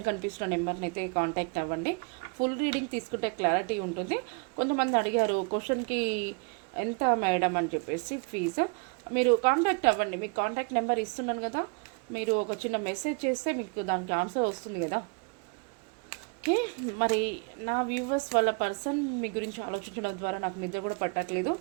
కనిపిస్తున్న నెంబర్ని అయితే కాంటాక్ట్ అవ్వండి. ఫుల్ రీడింగ్ తీసుకుంటే క్లారిటీ ఉంటుంది. కొంతమంది అడిగారు క్వశ్చన్కి ఎంత మేడం అని చెప్పేసి ఫీజు. మీరు కాంటాక్ట్ అవ్వండి, మీకు కాంటాక్ట్ నెంబర్ ఇస్తున్నాను కదా, మీరు ఒక చిన్న మెసేజ్ చేస్తే మీకు దానికి ఆన్సర్ వస్తుంది కదా. ఓకే, మరి నా వ్యూవర్స్ వాళ్ళ పర్సన్ మీ గురించి ఆలోచించడం ద్వారా నాకు నిద్ర కూడా పట్టట్లేదు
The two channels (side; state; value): left; quieter; 32.8 dB